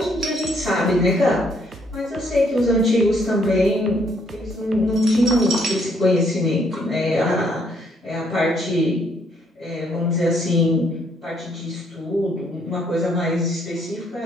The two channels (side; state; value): both; normal; correlation 0.69